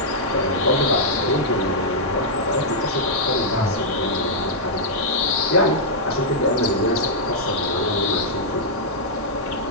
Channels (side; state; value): both; normal; correlation -0.08